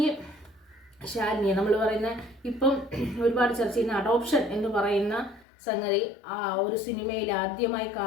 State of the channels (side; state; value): right; drops out; at 5.5 s